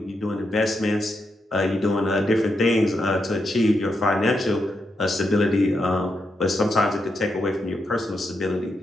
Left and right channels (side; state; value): both; normal; correlation 0.83